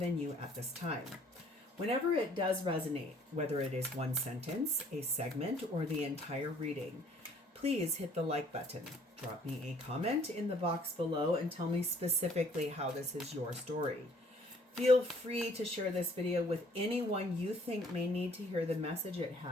you at this time. Whenever it does resonate, whether it is one sentence, a segment, or the entire reading, please hit the like button. Drop me a comment in the box below and tell me specifically how this is your story. Feel free to share this video with anyone you think may need to hear the message it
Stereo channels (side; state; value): both; normal; correlation 0.59